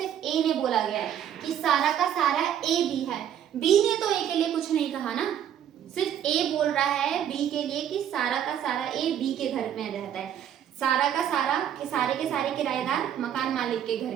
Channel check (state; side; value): quieter; left; 9.8 dB